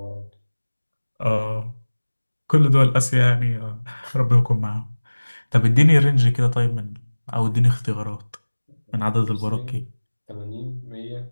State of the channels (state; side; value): inverted; both; correlation -1.00